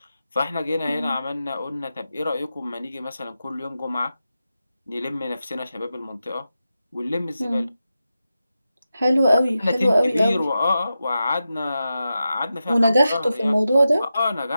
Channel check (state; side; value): inverted; both; correlation -0.91